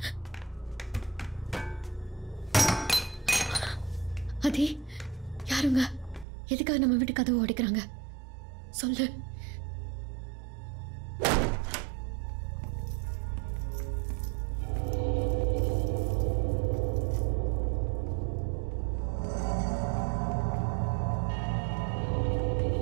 அதே யாருங்க? எதுக்காக நம்ம வீட்டு கதவு உடைக்கிறாங்க? சொல்லு.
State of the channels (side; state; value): left; drops out; at 6.2 s